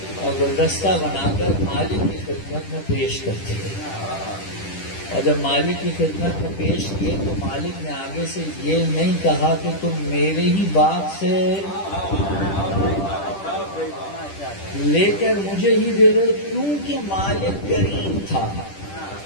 اور گلدستہ بنا کر مالک کی خدمت میں پیش کرتے گئے، اور جب مالک کی خدمت میں پیش کیے تو مالک نے آگے سے یہ نہیں کہا کہ تم میرے ہی باغ سے لے کر مجھے ہی دے رہے، کیونکہ مالک کریم تھا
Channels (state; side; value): late; right; 10 ms